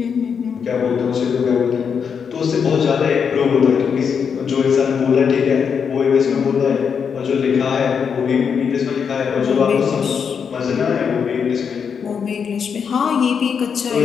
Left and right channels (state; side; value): quieter; right; 6.7 dB